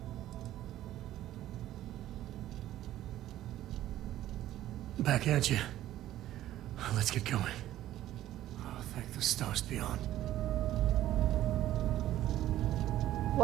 Back at you. Let's get going. Oh, thank the stars beyond.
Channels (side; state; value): left; quieter; 13.5 dB